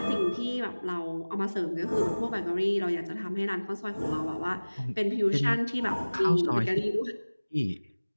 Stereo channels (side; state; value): both; inverted; correlation -1.00